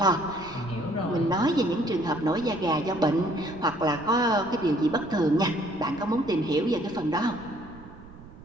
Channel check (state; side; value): noise; right; rumble, 18 dB below the sound